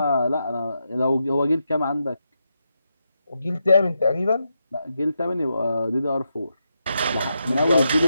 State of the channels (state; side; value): inverted; both; correlation -0.85